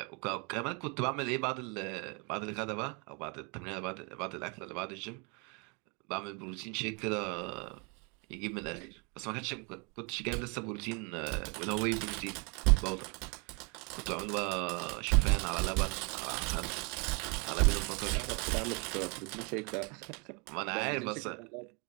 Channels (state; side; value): quieter; left; 32.9 dB